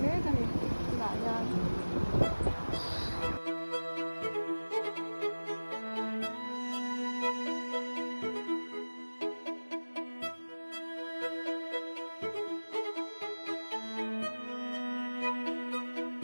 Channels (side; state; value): both; inverted; correlation -1.00